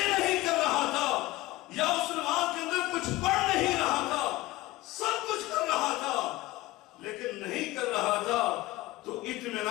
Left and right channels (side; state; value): right; quieter; 18.5 dB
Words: نہیں کر رہا تھا، یا اس نماز کے اندر کچھ پڑھ نہیں رہا تھا، سب کچھ کر رہا تھا، لیکن نہیں کر رہا تھا تو